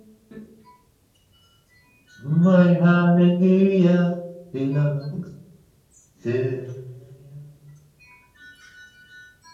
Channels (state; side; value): identical; both; correlation 1.00